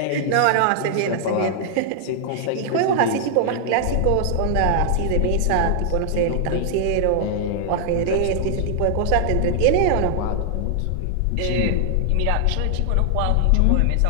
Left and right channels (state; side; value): different; both; correlation -0.01